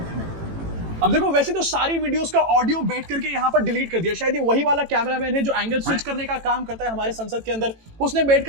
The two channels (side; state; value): left; late; 18 ms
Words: अब देखो, वैसे तो सारी वीडियोस का ऑडियो बैठ करके यहाँ पर डिलीट कर दिया। शायद ये वही वाला कैमरामैन है जो एंगल स्विच करने का काम करता है हमारे संसद के अंदर। उसने